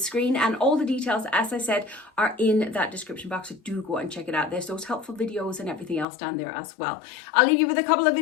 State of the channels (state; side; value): drops out; right; at 6.1 s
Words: and all the details, as I said, are in that description box. So do go and check it out. There's those helpful videos and everything else down there as well. I'll leave you with a couple of